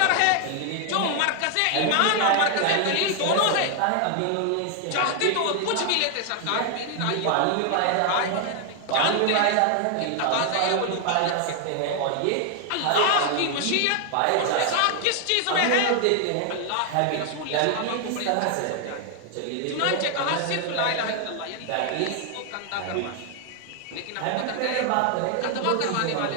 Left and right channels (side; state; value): both; different; correlation 0.00